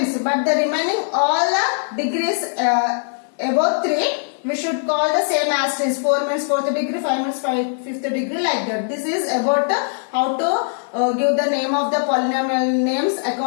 but the remaining all the degrees above 3 we should call the same as is. 4 means 4th degree, 5 means 5th degree, like that. This is about how to give the name of the polynomial names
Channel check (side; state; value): right; silent; digital silence